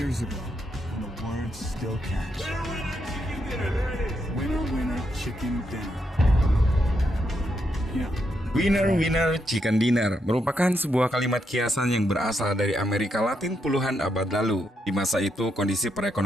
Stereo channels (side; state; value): both; normal; correlation 0.80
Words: ago, and the words still catch. Winner, winner, chicken dinner. Yeah. Winner, winner, chicken dinner merupakan sebuah kalimat kiasan yang berasal dari Amerika Latin puluhan abad lalu. Di masa itu, kondisi